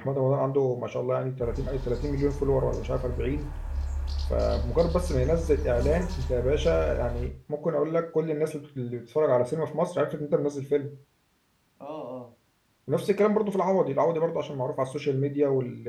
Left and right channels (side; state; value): both; identical; correlation 1.00